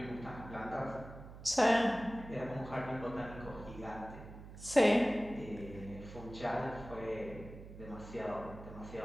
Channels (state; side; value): noise; right; hum, 14 dB below the sound